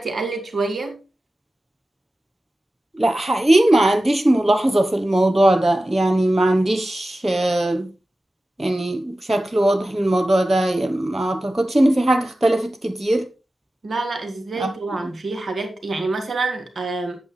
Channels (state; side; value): normal; both; correlation 0.95